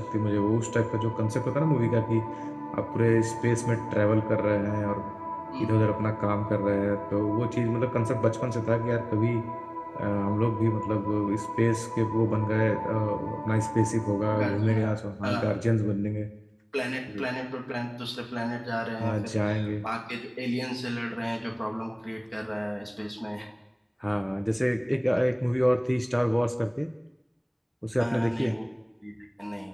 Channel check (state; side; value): identical; both; correlation 1.00